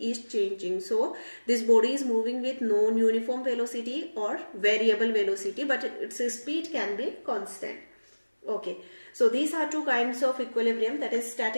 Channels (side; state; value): both; inverted; correlation -1.00